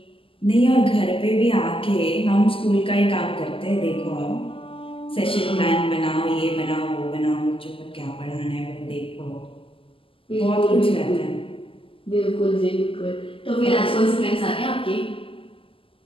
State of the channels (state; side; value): late; right; 0.26 ms